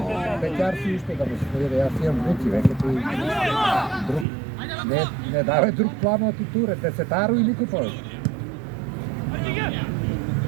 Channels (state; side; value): drops out; left; at 4.2 s